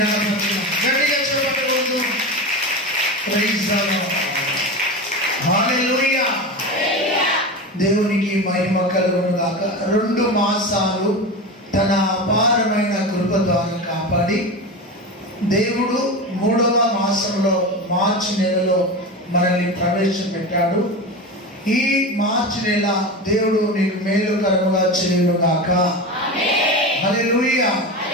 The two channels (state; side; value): normal; both; correlation 0.24